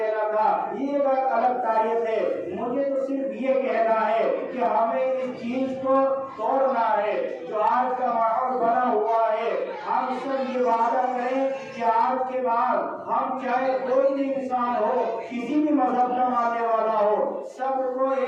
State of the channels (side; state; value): both; identical; correlation 1.00